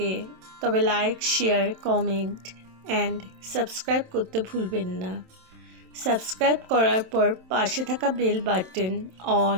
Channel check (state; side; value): late; left; 27 ms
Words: তবে like, share, comment and subscribe করতে ভুলবেন না। সাবস্ক্রাইব করার পর পাশে থাকা বেল বাটন